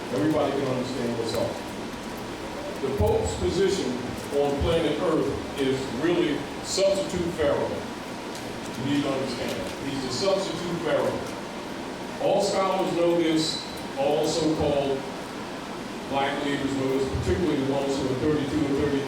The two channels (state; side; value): identical; both; correlation 1.00